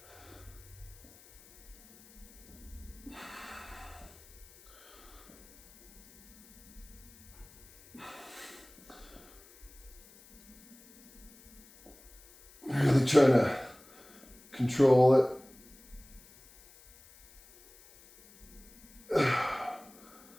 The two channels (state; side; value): noise; left; hiss, 24 dB below the sound